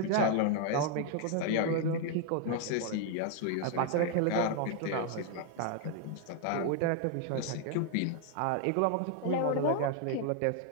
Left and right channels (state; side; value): different; both; correlation 0.00